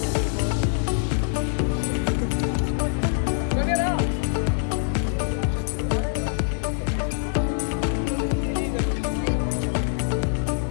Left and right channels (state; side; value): silent; right; 62 dB below the other